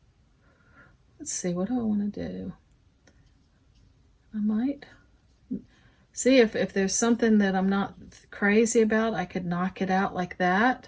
Let's see, what do I want to do? I might see if there's something that I'm not crazy about, I could knock it out like that.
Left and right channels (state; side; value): identical; both; correlation 1.00